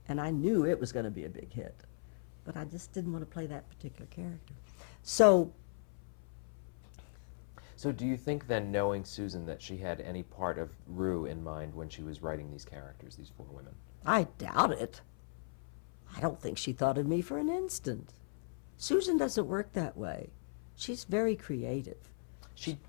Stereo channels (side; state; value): right; silent; 53 dB below the other